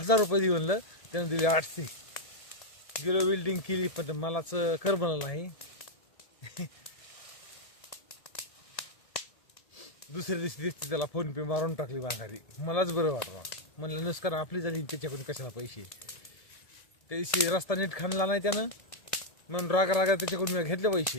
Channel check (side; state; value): right; late; 1.7 ms